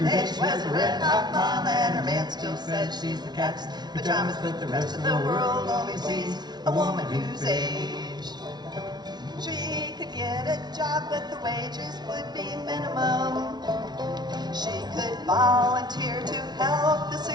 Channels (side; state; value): left; late; 0.20 ms